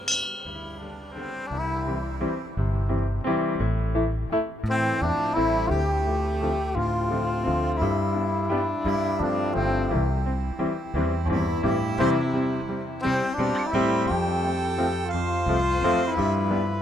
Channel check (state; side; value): normal; both; correlation 0.79